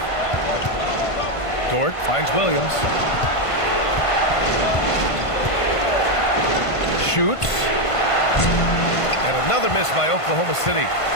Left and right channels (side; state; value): right; late; 1.5 ms